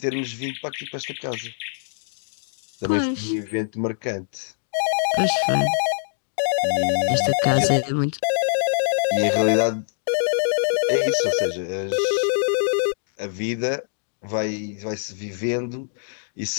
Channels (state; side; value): silent; right; digital silence